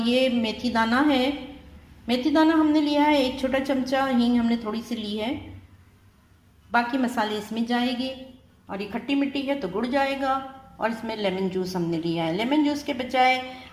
मेथी दाना है। मेथी दाना हमने लिया है 1 छोटा चमचा, हींग हमने थोड़ी सी ली है। बाकी मसाले इसमें जाएंगे और ये खट्टी मिट्टी है तो गुड़ जाएगा। और इसमें लेमन जूस हमने लिया है। लेमन जूस के बजाय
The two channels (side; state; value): both; identical; correlation 1.00